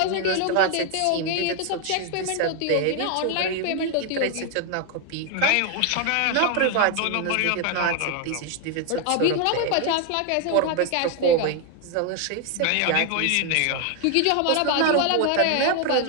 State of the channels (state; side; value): different; both; correlation 0.01